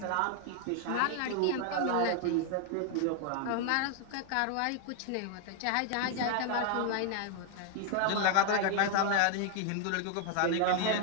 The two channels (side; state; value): both; different; correlation 0.00